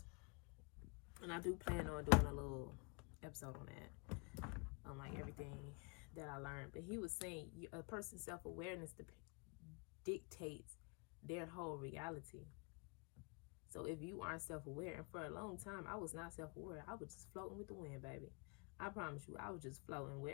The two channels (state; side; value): quieter; right; 32.0 dB